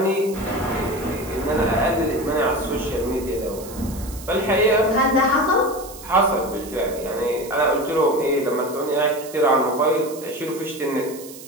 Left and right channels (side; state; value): right; noise; hiss, 16 dB below the sound